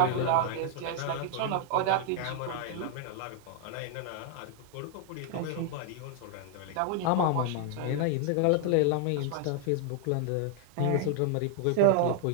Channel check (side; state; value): both; different; correlation 0.00